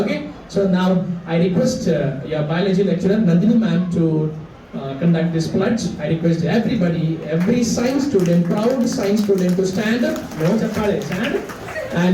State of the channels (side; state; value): both; identical; correlation 1.00